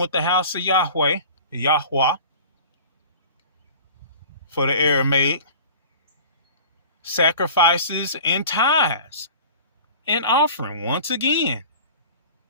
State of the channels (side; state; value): both; inverted; correlation -0.41